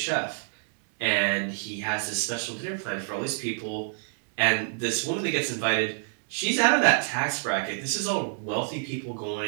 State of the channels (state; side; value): silent; left; digital silence